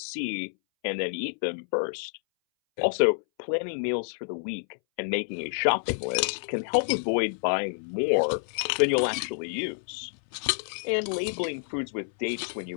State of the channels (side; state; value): right; silent; 59 dB below the other